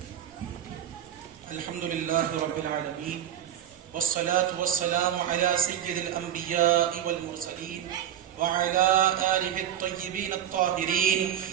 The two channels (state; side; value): quieter; left; 10.4 dB